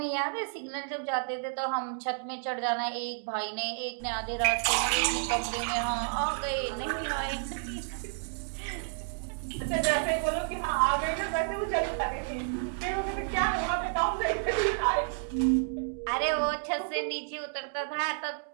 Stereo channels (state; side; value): silent; left; digital silence